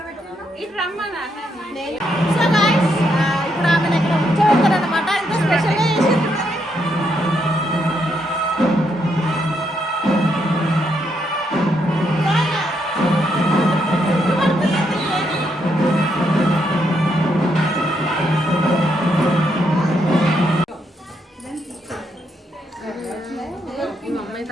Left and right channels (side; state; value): both; normal; correlation 0.77